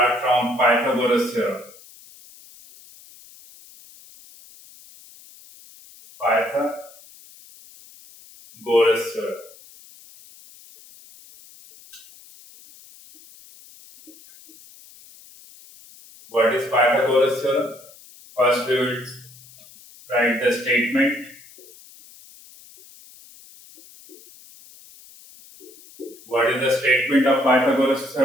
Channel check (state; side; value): noise; left; hiss, 23 dB below the sound